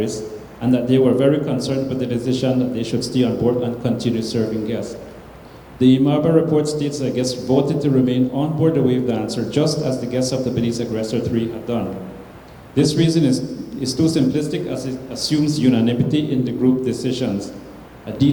and that they were very concerned with the decision that they should stay on board and continue serving guests. The Imaba report states that guests voted to remain on board the wave dancer just as the guests of the Belize Aggressor 3 had done. This reason is too simplistic as it assumes unanimity in the group decisions, a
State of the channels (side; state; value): both; identical; correlation 1.00